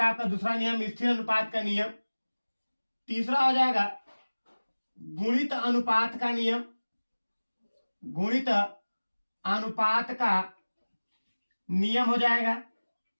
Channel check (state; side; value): inverted; both; correlation -1.00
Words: आपका दूसरा नियम, स्थिर अनुपात का नियम। तीसरा हो जाएगा गुणित अनुपात का नियम। गुणित अनुपात का नियम हो जाएगा।